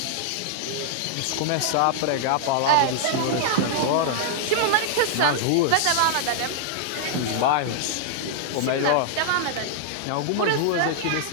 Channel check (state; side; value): different; both; correlation -0.01